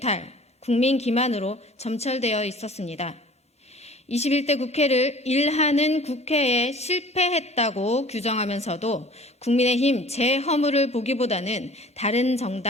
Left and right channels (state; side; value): normal; both; correlation 0.47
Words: 국민 기만으로 점철되어 있었습니다. 21대 국회를 일하는 국회에 실패했다고 규정하면서도 국민의힘 재허물을 보기보다는 다른